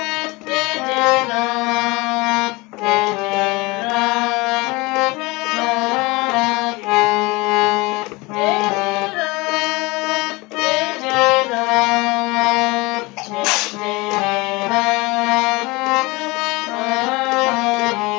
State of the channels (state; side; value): quieter; right; 23.9 dB